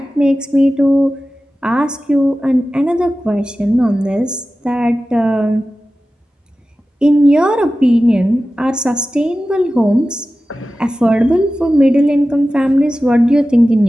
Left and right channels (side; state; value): both; normal; correlation 0.95